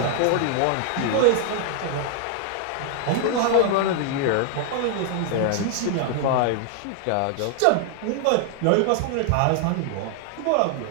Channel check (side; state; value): both; different; correlation 0.00